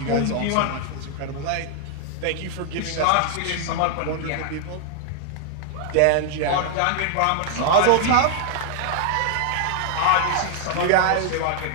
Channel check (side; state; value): both; different; correlation 0.00